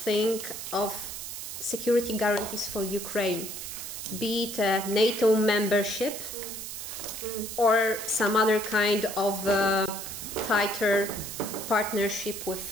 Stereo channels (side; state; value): right; noise; hiss, 8 dB below the sound